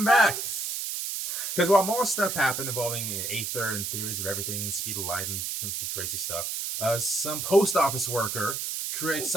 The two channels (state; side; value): noise; right; hiss, 3 dB below the sound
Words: back! Because while more stuff happened involving aether and theories of everything and speed of light and some crazy stuff, some post office worker creates